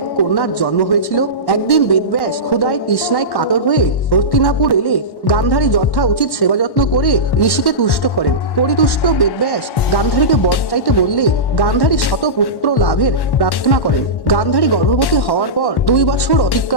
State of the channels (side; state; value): right; late; 1.1 ms